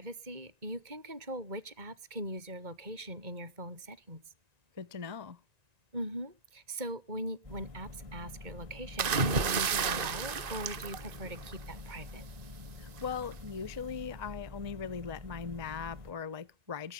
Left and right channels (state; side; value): late; left; 1.9 ms